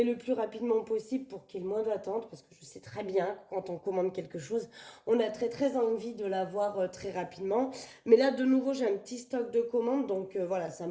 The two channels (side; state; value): both; identical; correlation 1.00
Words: le plus rapidement possible pour qu'il y ait le moins d'attente. Parce que je sais très bien que quand on commande quelque chose, on a très très envie de l'avoir très rapidement. Mais là, de nouveau, j'ai un petit stock de commandes. Donc voilà, ça